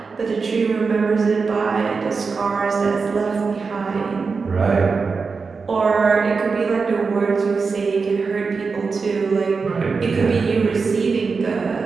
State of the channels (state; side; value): quieter; left; 4.8 dB